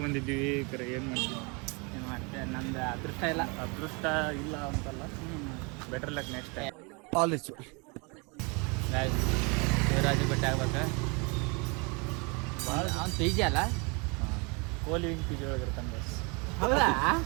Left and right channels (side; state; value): left; quieter; 30.8 dB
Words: ಕರೆ ಏನು ಮಾಡ್ತೀವಿ? ಏನು ಮಾಡ್ತೆ ನಮ್ದು ಅದೃಷ್ಟ ಇಲ್ಲ. ಅದೃಷ್ಟ ಇಲ್ಲ ಅಂತಲ್ಲ, better luck next time. Guys Shivraj ಬೆಟ್ಟ ಆಗ್ಬೇಕು. ಭಾಳ ಅವ್ನು ಪಿ ಜಿ ಅಲ್ಲ, ಕೋಹ್ಲಿ ವಿಂಗ್ ಪಿ ಜಿ ಒಳಗಿರ್ತಾನೆ ಬಸ್. ಹೌದಾ?